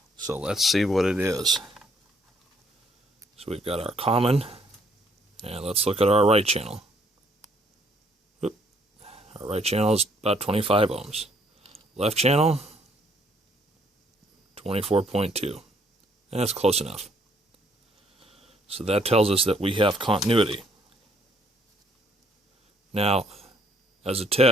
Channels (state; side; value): normal; both; correlation 0.66